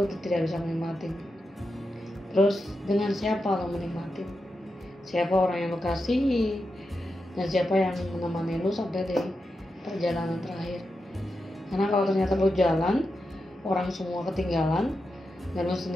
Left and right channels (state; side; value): normal; both; correlation 0.88